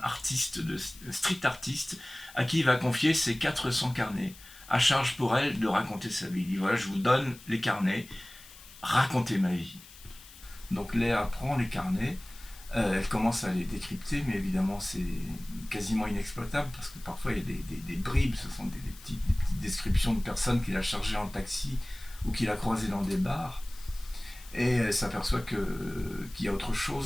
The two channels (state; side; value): noise; left; hiss, 20 dB below the sound